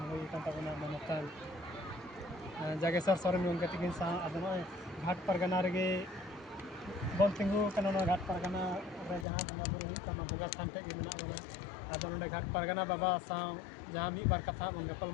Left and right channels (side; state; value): right; drops out; at 9.2 s